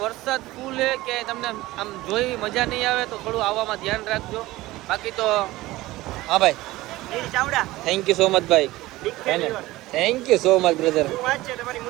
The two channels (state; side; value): quieter; left; 18.1 dB